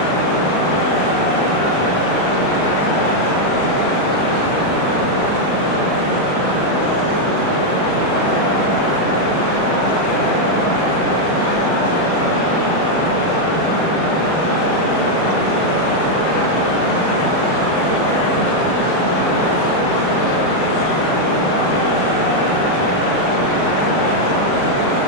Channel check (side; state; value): right; late; 39 ms